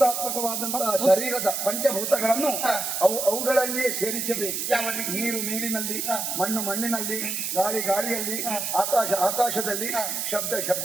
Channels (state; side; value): noise; right; hiss, 2 dB below the sound